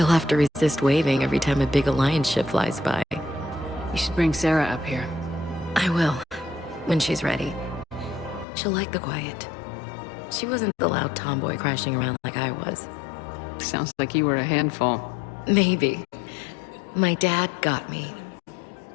have to resist waving every time a big Alliance ship flies by. You should bring Sarah up here. I will, when she's ready. She'll like the quiet. She wasn't the loud tomboy crashing around like I was. Sounds like you were a handful. Maybe. My dad got me.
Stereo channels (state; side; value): drops out; right; at 8.5 s